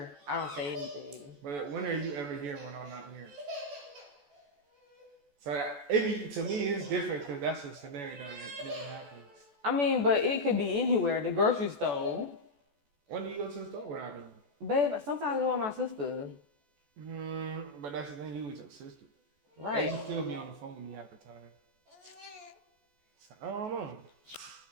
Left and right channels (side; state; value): left; late; 14 ms